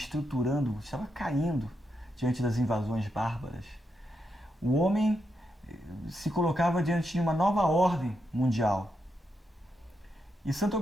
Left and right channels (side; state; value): both; normal; correlation 0.83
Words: estava caindo diante das invasões bárbaras. O homem se colocava diante de uma nova ordem mundial. E Santo